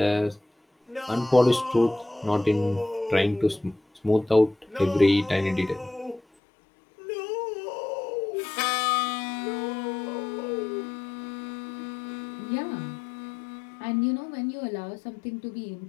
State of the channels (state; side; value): drops out; right; at 6.2 s